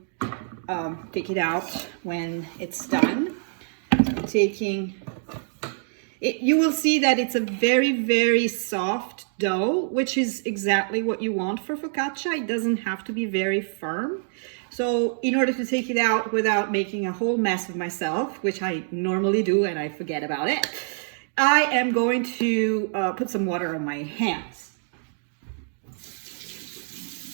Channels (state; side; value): silent; left; digital silence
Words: take it out when it's done. I'm taking it, you will see that it's a very, very soft dough, which is exactly what you want for focaccia. It doesn't have to be very firm. So in order to take it out without making a whole mess of myself, which I normally do and I forget about it, I am going to put some water on my hands.